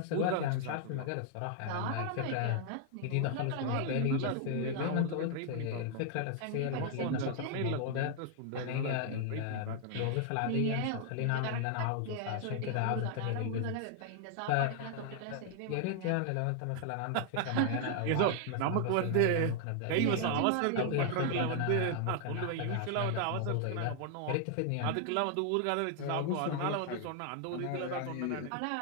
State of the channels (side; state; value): both; different; correlation 0.00